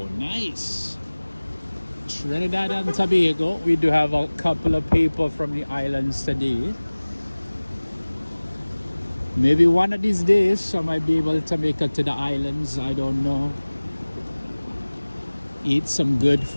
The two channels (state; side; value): inverted; both; correlation -1.00